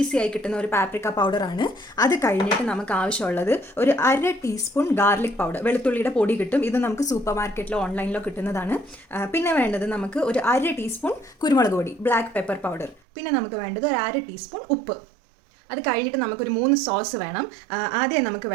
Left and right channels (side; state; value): left; drops out; at 13.0 s